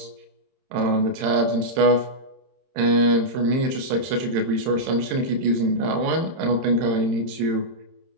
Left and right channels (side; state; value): left; late; 31 ms